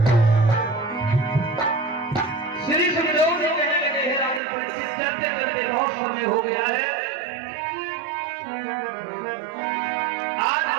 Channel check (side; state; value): left; drops out; at 4.4 s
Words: श्री सुखदेव जी कहने लगे, हे राजन परीक्षित, चलते चलते बहुत समय हो गया है। आज